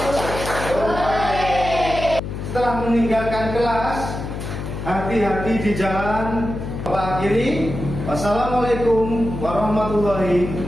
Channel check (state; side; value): noise; left; hum, 6 dB below the sound